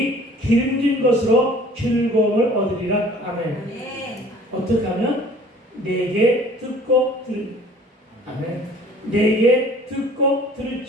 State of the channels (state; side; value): normal; both; correlation 0.50